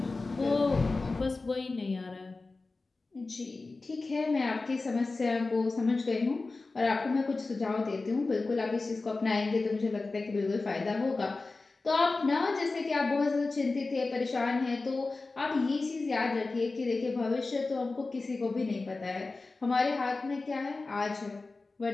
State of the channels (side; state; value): right; quieter; 3.6 dB